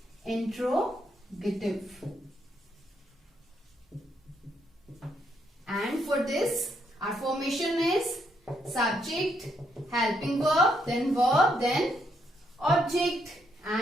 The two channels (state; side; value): normal; both; correlation 0.75